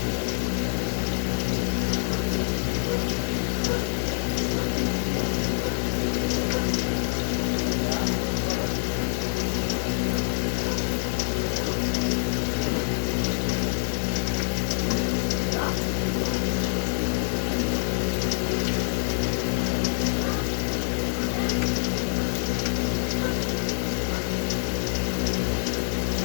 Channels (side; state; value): right; silent; digital silence